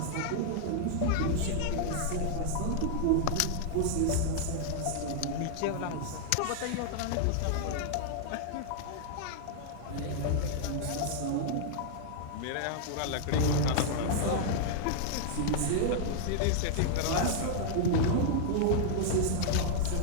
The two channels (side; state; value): both; different; correlation -0.01